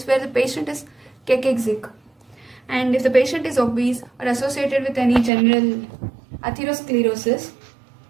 where the patient is cachexia, and if the patient is obese or associated with any general atherosclerosis,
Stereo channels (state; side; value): drops out; left; at 5.3 s